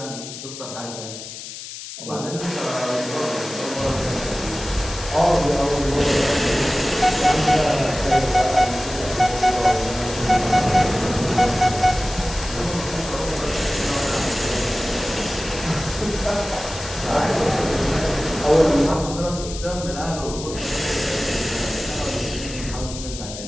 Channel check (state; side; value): noise; left; hiss, 11 dB below the sound